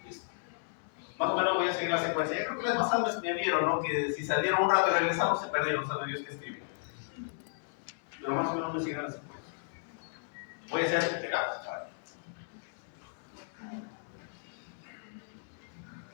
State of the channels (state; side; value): silent; right; digital silence